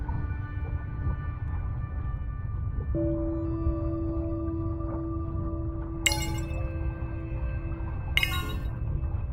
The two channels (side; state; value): both; identical; correlation 1.00